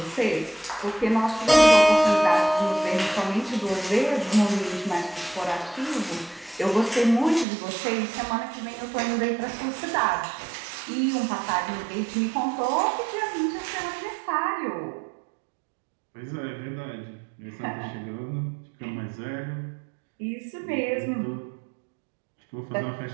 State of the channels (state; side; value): drops out; left; at 7.5 s